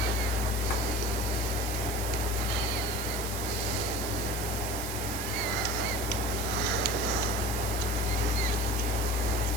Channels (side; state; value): right; noise; hiss, 6 dB below the sound